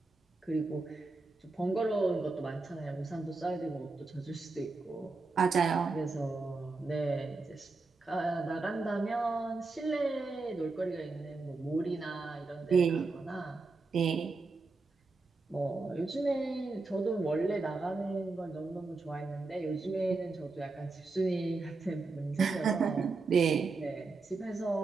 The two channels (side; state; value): left; quieter; 3.8 dB